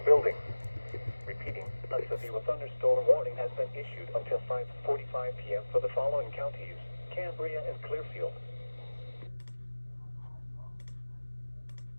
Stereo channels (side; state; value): both; inverted; correlation -1.00